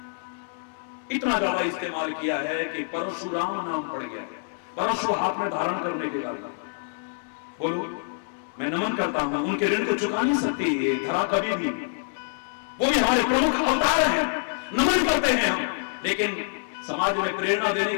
इतना ज्यादा इस्तेमाल किया है कि परशुराम नाम पड़ गया है, परशु हाथ में धारण करने के कारण। बोलो, मैं नमन करता हूं, उनके ऋण को चुका नहीं सकती ये धरा कभी भी। वो भी हमारे प्रमुख अवतार हैं, नमन करते हैं हम। लेकिन समाज में प्रेरणा देने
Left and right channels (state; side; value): silent; right; digital silence